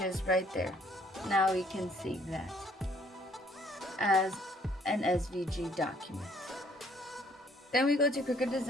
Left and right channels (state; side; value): normal; both; correlation 0.63